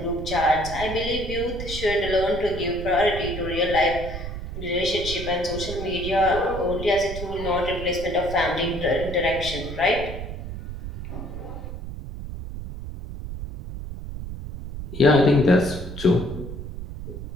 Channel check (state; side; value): noise; right; rumble, 8 dB below the sound